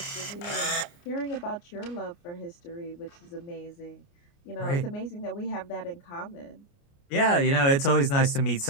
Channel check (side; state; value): right; late; 29 ms